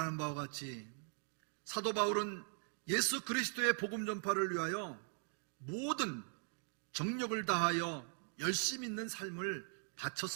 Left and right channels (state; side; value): silent; left; 51 dB below the other